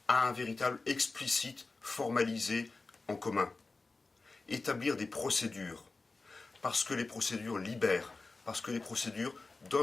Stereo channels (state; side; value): quieter; right; 3.7 dB